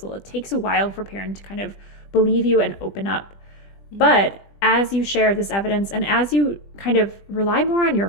It takes a while for Perrin to kind of believe you and open up. But as you share this evidence and as you kind of rely more on your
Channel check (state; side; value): late; right; 20 ms